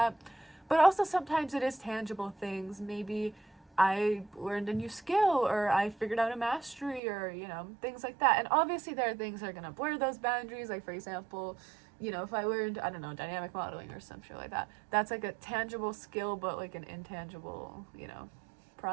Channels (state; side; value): drops out; left; at 7.0 s